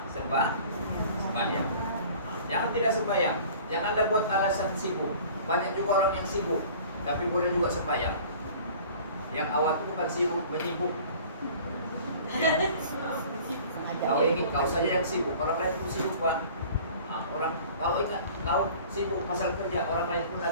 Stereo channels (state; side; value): inverted; both; correlation -0.46